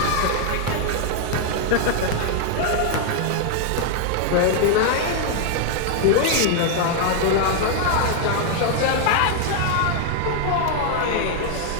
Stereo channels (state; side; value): different; both; correlation 0.00